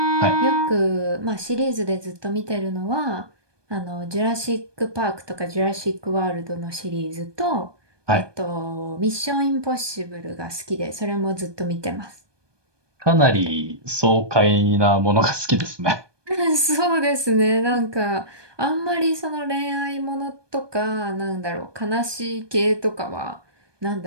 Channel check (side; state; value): left; late; 1.2 ms